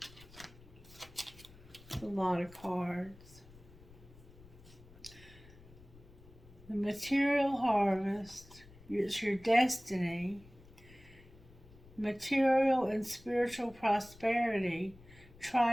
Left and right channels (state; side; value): noise; left; rumble, 22 dB below the sound